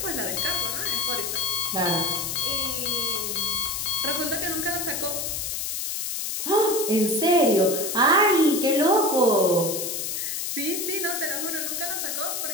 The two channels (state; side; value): noise; left; hiss, 3 dB below the sound